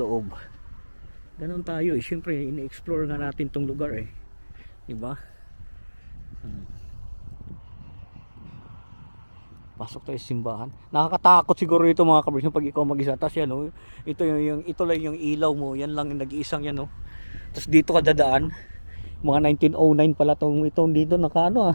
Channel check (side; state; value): both; inverted; correlation -1.00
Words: Ganon tayo siyempre ini-explore nga natin tong lugar diba? Pasok tayo sa simbahan. Nakakatakot siguro ito mga kabrys pag ikaw mag-isa. Tapos yan, oh, ito lang yung ilaw mo. Yan lang yung nag-iisang yan. Oh. Tapos dito ka dadaan. Mga 1909 pala itong dito nakaano